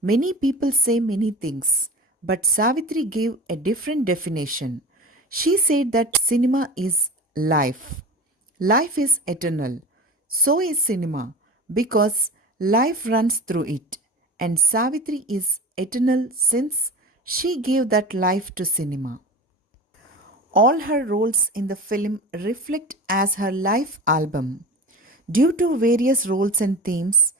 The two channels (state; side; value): normal; both; correlation 0.31